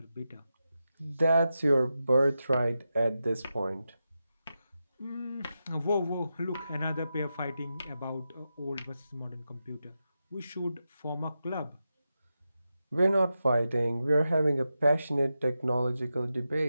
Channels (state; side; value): inverted; both; correlation -0.89